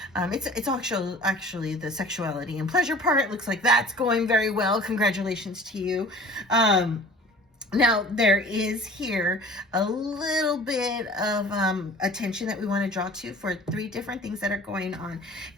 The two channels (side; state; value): both; normal; correlation 0.46